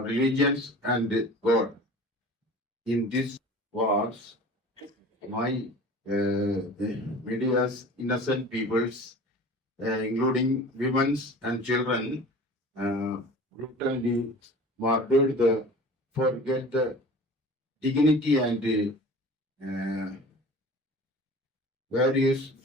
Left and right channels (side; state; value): both; normal; correlation 0.41